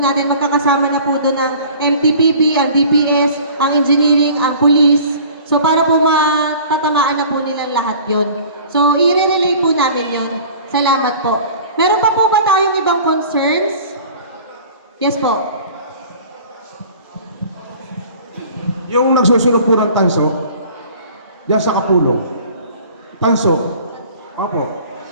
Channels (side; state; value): both; inverted; correlation -0.46